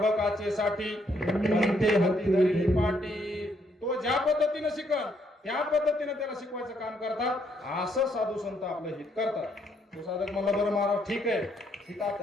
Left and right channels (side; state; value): both; normal; correlation 0.72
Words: सेवेसाठी पंथे हाती धरली पाटी. तो ज्या पद्धतीने शिकल त्या पद्धतीने त्याला शिकवायचं काम करतात. असं साधू संत आपलं हित करतात. तो साधक म्हणला बरं महाराज ठीक